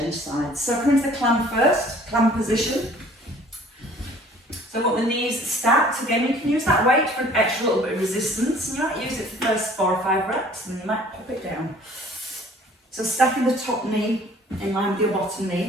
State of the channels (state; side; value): normal; both; correlation 0.53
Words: sides. So come into the clam first, clam position. So I've got the knees stacked. Again, you can use that weight for an extra little bit of resistance. You might use it for the first 4 or 5 reps, and then you might pop it down. So stacking the top knee in line with your bottom